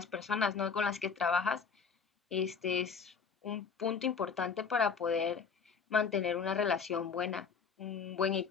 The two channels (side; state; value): right; quieter; 5.9 dB